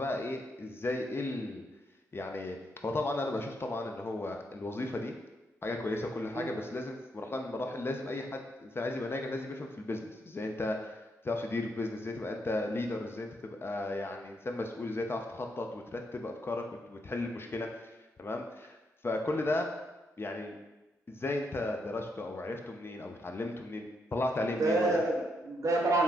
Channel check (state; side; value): normal; both; correlation 0.78